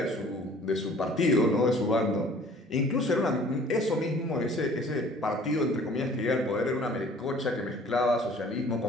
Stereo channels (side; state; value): both; normal; correlation 0.52